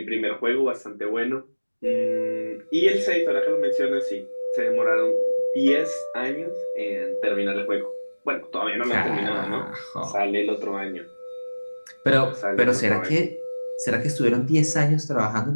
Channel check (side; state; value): both; inverted; correlation -1.00